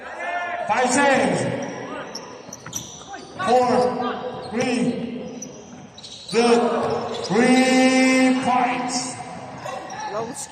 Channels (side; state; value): both; identical; correlation 1.00